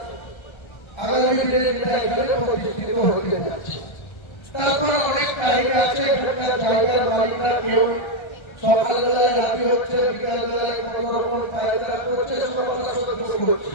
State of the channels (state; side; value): late; right; 1.3 ms